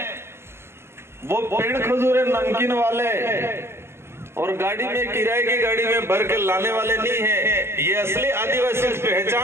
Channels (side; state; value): left; late; 0.12 ms